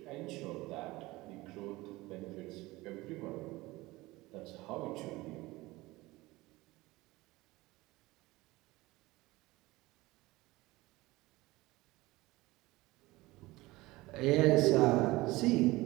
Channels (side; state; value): left; quieter; 20.2 dB